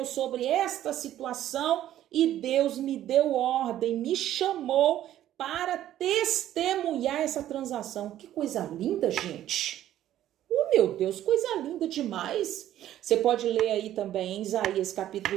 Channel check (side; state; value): left; quieter; 12.4 dB